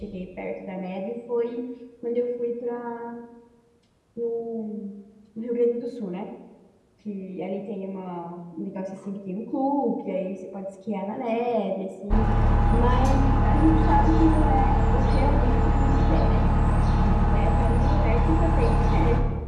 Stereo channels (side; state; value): both; identical; correlation 1.00